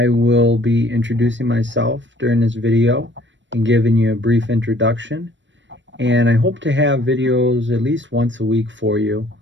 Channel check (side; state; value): left; late; 0.54 ms